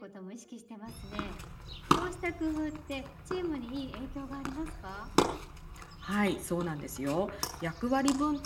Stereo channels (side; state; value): both; identical; correlation 1.00